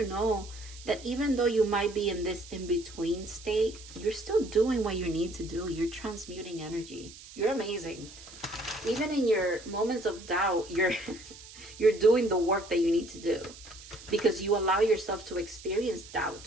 know that even though you might be in this in-between state, you're still doing what you need to do. You're transmuting energy. You're amazing. Even in your moments of doubt, you're doing the work that you need to do. Because you allow yourself to experience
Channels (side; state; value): right; noise; hiss, 17 dB below the sound